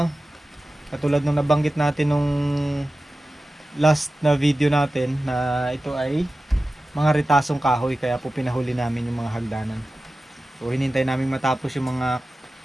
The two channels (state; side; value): normal; both; correlation 0.95